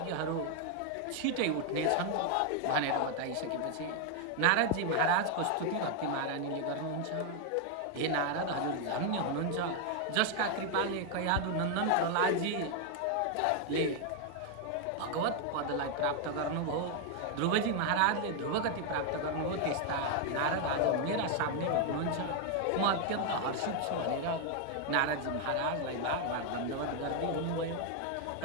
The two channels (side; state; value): both; different; correlation 0.00